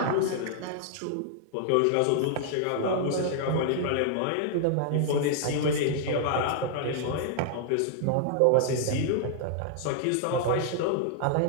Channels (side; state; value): both; different; correlation -0.01